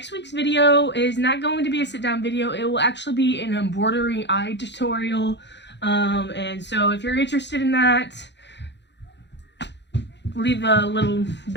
week's video is not going to be a sit-down video. It will actually be an embroidery eye tutorial. And so if you're interested in that, leave a little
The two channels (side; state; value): right; late; 0.51 ms